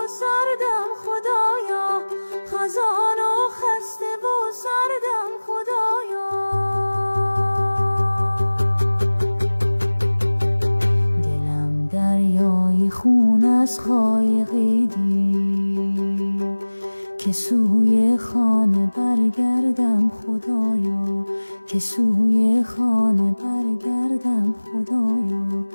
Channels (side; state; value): both; inverted; correlation -1.00